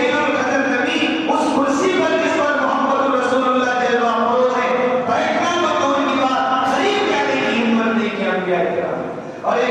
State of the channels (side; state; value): both; identical; correlation 1.00